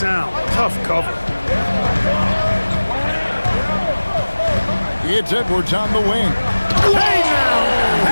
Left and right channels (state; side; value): inverted; both; correlation -1.00